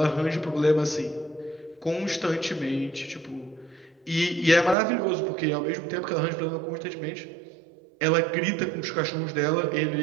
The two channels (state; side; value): drops out; left; at 4.8 s